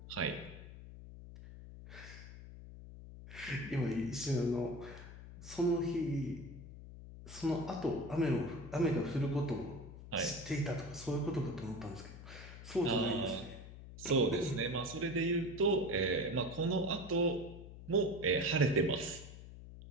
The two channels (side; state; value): left; noise; hum, 14 dB below the sound